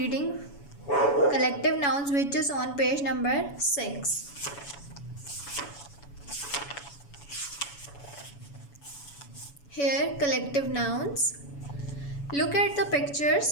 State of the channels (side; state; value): right; late; 7.1 ms